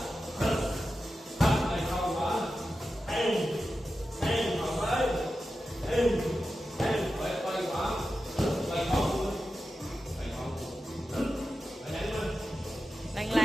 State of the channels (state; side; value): normal; both; correlation 0.92